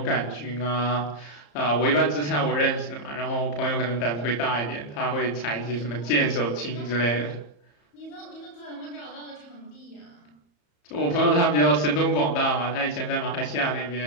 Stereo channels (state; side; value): late; right; 34 ms